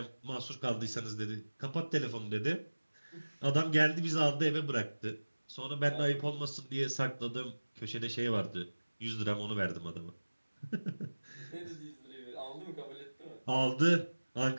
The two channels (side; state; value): both; inverted; correlation -1.00